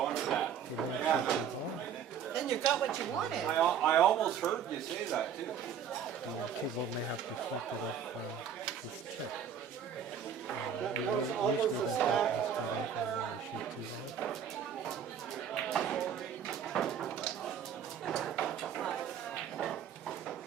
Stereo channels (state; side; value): quieter; left; 8.0 dB